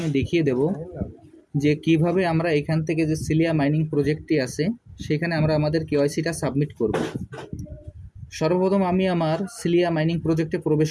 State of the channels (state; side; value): identical; both; correlation 1.00